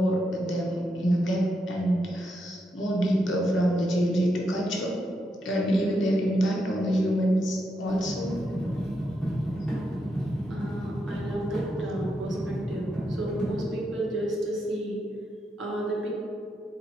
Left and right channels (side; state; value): both; normal; correlation 0.82